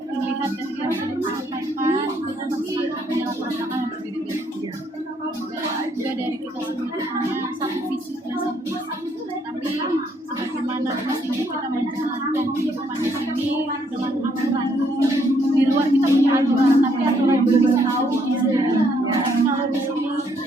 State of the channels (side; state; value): both; normal; correlation 0.70